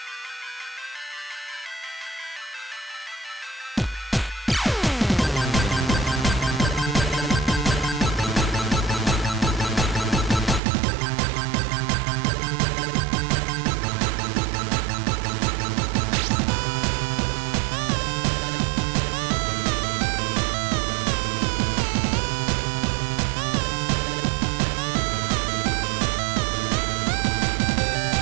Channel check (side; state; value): left; drops out; at 10.6 s